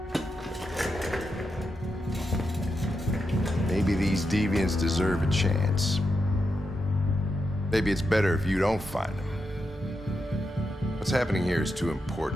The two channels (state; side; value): normal; both; correlation 0.86